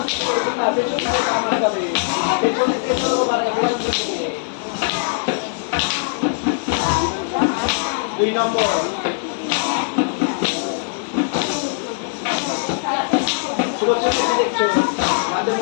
নম্বর সুরক্ষা দেখছো হাতে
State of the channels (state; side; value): silent; right; 60 dB below the other